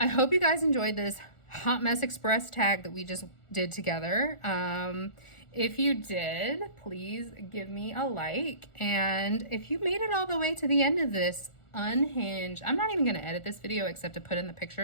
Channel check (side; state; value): right; late; 1.4 ms